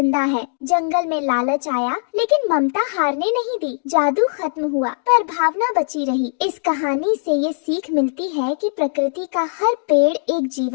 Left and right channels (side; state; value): right; silent; digital silence